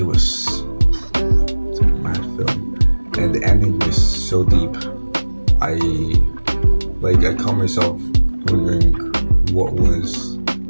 was a mad film, and the ending was so deep. I caught myself wondering what was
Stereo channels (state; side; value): inverted; both; correlation -1.00